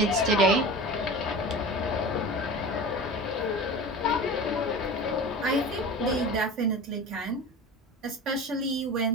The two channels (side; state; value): both; normal; correlation 0.33